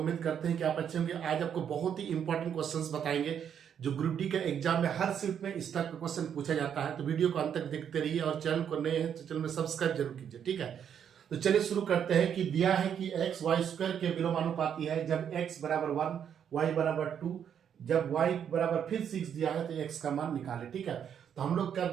करते हैं कि आप अच्छे होंगे। आज आपको बहुत ही इंपॉर्टेंट क्वेश्चंस बताएंगे जो ग्रुप डी के एग्जाम में हर शिफ्ट में इस टाइप का क्वेश्चन पूछा जाता है। तो वीडियो को अंत तक देखते रहिए और चैनल को नए हैं तो चैनल में सब्सक्राइब जरूर कीजिए, ठीक है। तो चलिए शुरू करते हैं कि दिया है कि एक्स वाई स्क्वायर के विलोमानुपाती है जब एक्स बराबर 1, वाई बराबर 2, जब वाई बराबर फिर 6 दिया है तो एक्स का मान निकाले, ठीक है। तो हम लोग क्या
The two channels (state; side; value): quieter; left; 8.5 dB